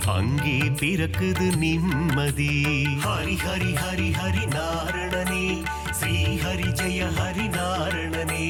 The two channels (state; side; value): identical; both; correlation 1.00